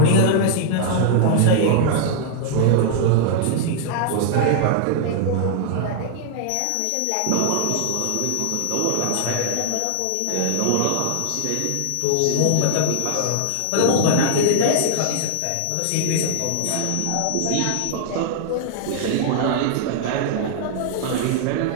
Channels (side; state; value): both; different; correlation 0.00